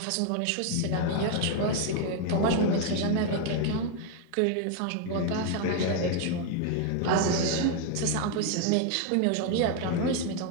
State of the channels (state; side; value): different; both; correlation 0.01